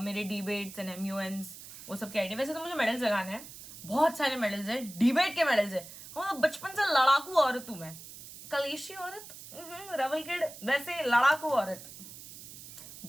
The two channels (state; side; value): noise; right; hiss, 15 dB below the sound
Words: मेरे डिबेट्स एंड एमयूएन्स, वो सब के आईडी। वैसे तो मुझे मेडल्स लगाने हैं, बहुत सारे मेडल्स है, डिबेट के मेडल्स है। हाँ बचपन से लड़ाकू औरत हूँ मैं, कलेशी औरत, रेबल किड, वैसे लड़ाकू औरत